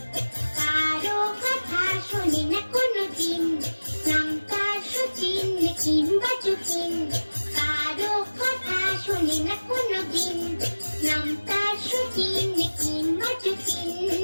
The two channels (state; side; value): inverted; both; correlation -1.00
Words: কারো কথা শোনে না কোনোদিন, নাম তার শচীন কিংবা চুকিন। কারো কথা শোনে না কোনোদিন, নাম তার শচীন কিংবা চুকিন।